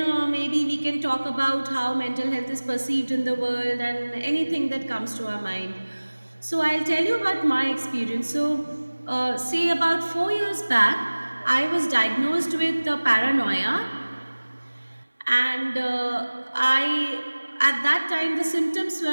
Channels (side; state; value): both; inverted; correlation -1.00